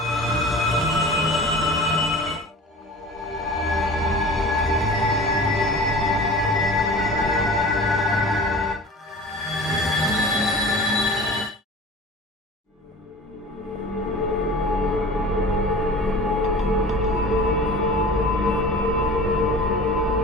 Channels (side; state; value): both; normal; correlation 0.39